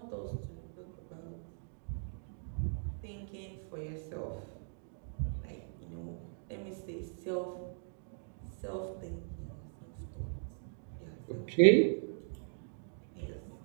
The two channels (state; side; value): silent; left; digital silence